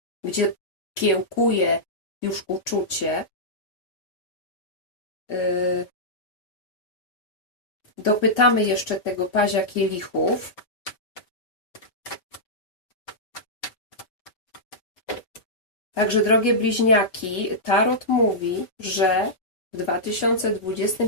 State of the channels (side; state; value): right; late; 4.7 ms